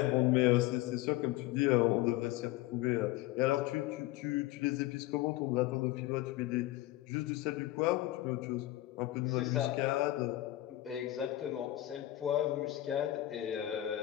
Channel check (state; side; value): quieter; right; 15.9 dB